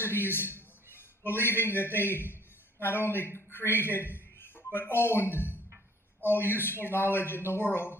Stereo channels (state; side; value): normal; both; correlation 0.56